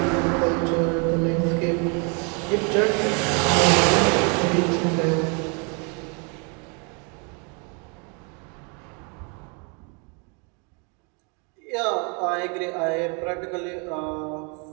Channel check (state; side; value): quieter; left; 34.9 dB